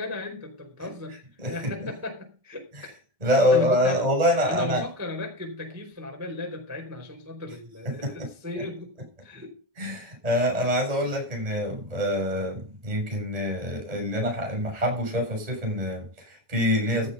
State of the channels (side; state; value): left; late; 1.8 ms